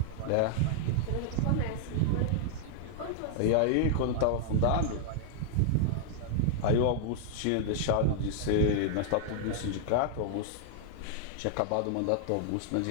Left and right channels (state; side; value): different; both; correlation -0.01